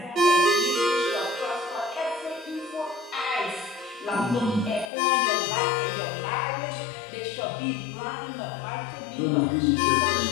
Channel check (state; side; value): drops out; right; at 4.9 s